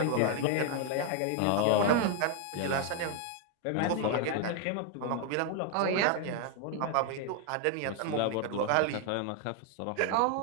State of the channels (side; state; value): both; different; correlation 0.00